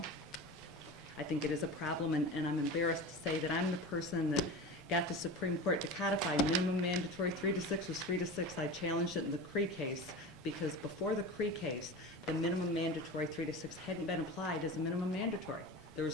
I think it is a problem, and I'm embarrassed to say that I'm the person that got the Supreme Court to codify minimum mandatory 3 to 6 was 3 to 6. I challenged it in the Cree case because before the Cree case, the minimum mandatory 3 to 6 hadn't been applied as a minimum mandatory. There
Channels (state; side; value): noise; right; rumble, 26 dB below the sound